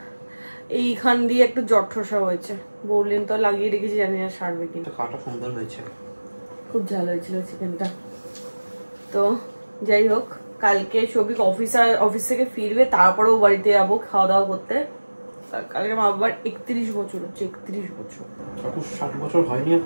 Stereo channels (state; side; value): inverted; both; correlation -1.00